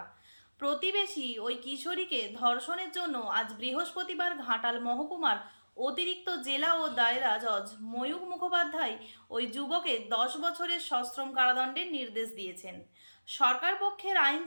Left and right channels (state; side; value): inverted; both; correlation -1.00